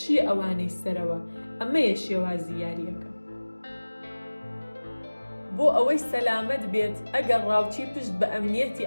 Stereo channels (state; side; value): inverted; both; correlation -1.00